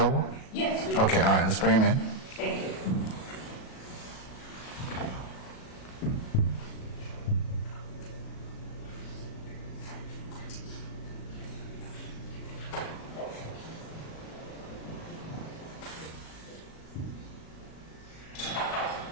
Yes. We do. Okay, all right, let's bring him in. Thank you.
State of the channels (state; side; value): late; right; 37 ms